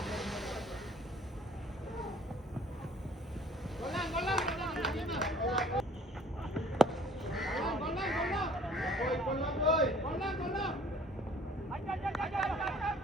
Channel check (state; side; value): normal; both; correlation 0.54